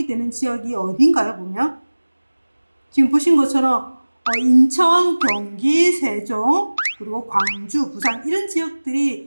지역이 어딘가요? 보면 지금 보신 것처럼 인천, 경기, 세종, 그리고 광주, 부산 이런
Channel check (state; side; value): inverted; both; correlation -1.00